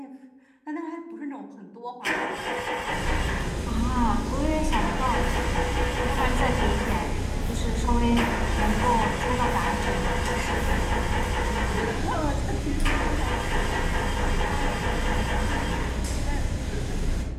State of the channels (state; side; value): identical; both; correlation 1.00